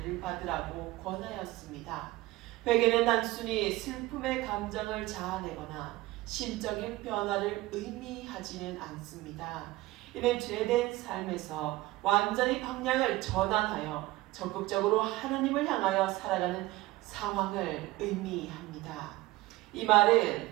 받으라고 권하였습니다. 회개는 단순히 슬픔의 감정을 자아내거나 심적인 변화를 의미하지는 않습니다. 이는 죄된 삶에서 완전히 방향을 전환하여 적극적으로 하나님을 향하여 살아가는 상황을 의미합니다. 이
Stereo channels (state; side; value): quieter; left; 18.5 dB